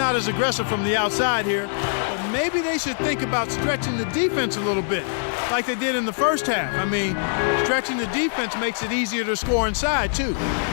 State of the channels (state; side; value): silent; right; 63 dB below the other